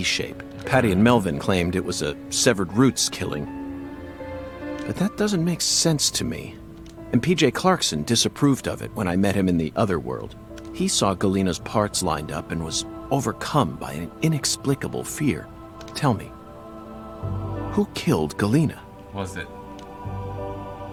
shape. Patty and Melvin claimed it was a severed roots killing. But that doesn't make sense to me. And PJ Clarkson disapproved of it when I met him in the other world. He saw Galena's parts lined up and was overcome by an inexplicable fear. Tell me, who killed Galena? Was it?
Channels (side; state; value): both; identical; correlation 1.00